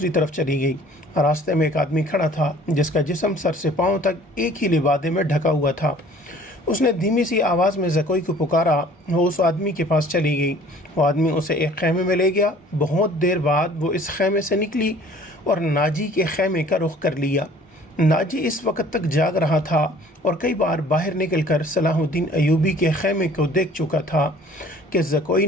طرف چلی گئی۔ راستے میں ایک آدمی کھڑا تھا جس کا جسم سر سے پاؤں تک ایک ہی لبادے میں ڈھکا ہوا تھا۔ اس نے دھیمی سی آواز میں زکوئی کو پکارا۔ وہ اس آدمی کے پاس چلی گئی۔ وہ آدمی اسے ایک خیمے میں لے گیا۔ بہت دیر بعد وہ اس خیمے سے نکلی اور ناجی کے خیمے کا رخ کر لیا۔ ناجی اس وقت تک جاگ رہا تھا اور کئی بار باہر نکل کر صلاح الدین ایوبی کے خیمے کو دیکھ چکا تھا کہ زکوئی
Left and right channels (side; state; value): both; normal; correlation 0.52